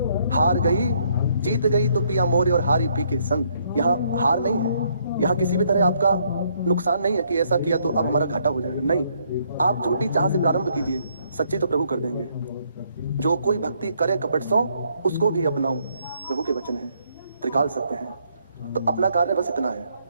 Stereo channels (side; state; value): both; inverted; correlation -0.70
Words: हार गई जीत गई तो पिया मोरे और हारी पी के संग। यहाँ हार नहीं है, यहाँ किसी भी तरह आपका नुकसान नहीं है कि ऐसा किया तो अब हमारा घाटा हो जाएगा। नहीं, आप झूठी चाह से प्रारंभ कीजिए, सच्ची तो प्रभु कर देंगे। जो कोई भक्ति करे कपट सो, उसको भी अपनाऊं, प्रभु के वचन है, त्रिकाल सत्य है। तो अपना कार्य बस इतना है,